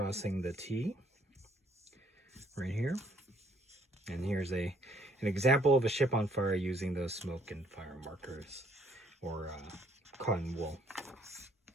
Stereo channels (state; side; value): normal; both; correlation 0.64